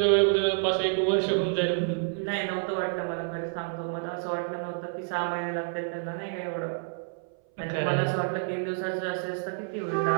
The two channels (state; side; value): silent; left; 59 dB below the other